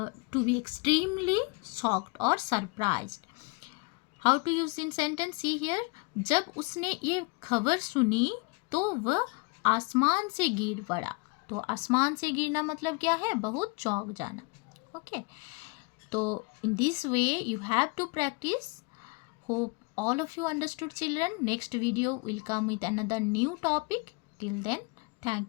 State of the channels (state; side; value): quieter; right; 29.4 dB